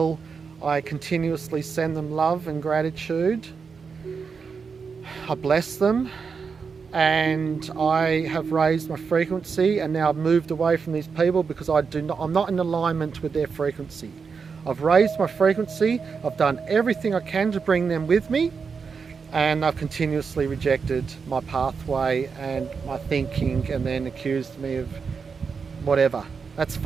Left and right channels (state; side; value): quieter; left; 5.5 dB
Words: I continuously send them love and gratitude. I bless them, and I have raised my frequency, and now I've moved away from these people because I'm not in alignment with their frequency. I've raised my frequency, I've done everything I can to bring them with me, and I've continuously rejected my pathway and my thinking, and then accused me of whatever. That's